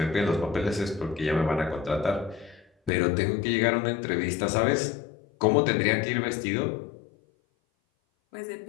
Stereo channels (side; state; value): right; drops out; at 2.9 s